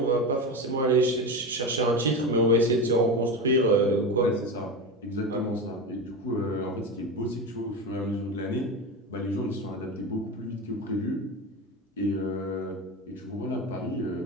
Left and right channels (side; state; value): both; normal; correlation 0.22